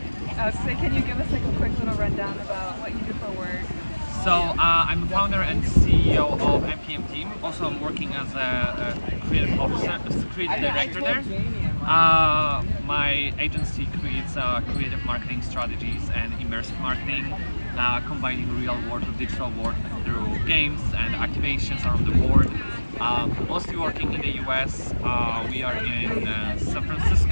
So can you give us like a quick little rundown about what you do for work? So I'm the founder and CEO of MPM Team. Also, I'm working as a creative officer, as a creative director there. My agency creates creative marketing strategies and immersive marketing, combining real world with digital world through games and activations around the world. Mostly working in the US. We are in San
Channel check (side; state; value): both; inverted; correlation -1.00